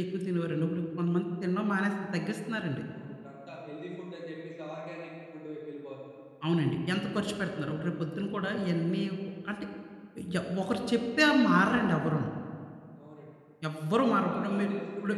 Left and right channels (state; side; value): identical; both; correlation 1.00